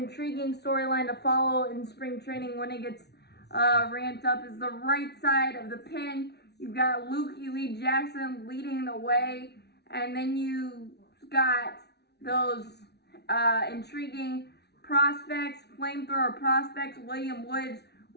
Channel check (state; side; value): late; right; 0.49 ms